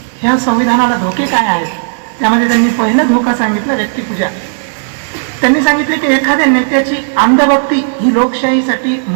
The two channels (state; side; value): silent; left; digital silence